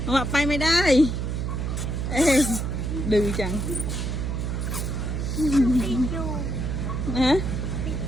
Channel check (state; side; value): noise; right; hum, 2 dB below the sound